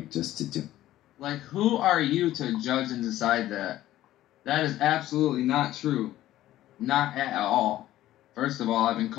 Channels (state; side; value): quieter; right; 14.2 dB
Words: just to do. Like, who are you to judge and decide that? That is absolutely not true. Not at all. First of all, I've been